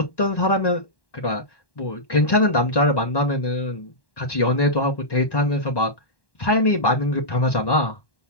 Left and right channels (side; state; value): right; late; 1.1 ms